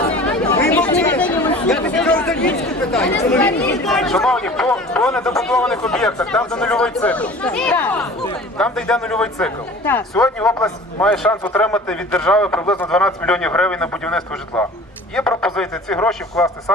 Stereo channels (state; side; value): normal; both; correlation 0.43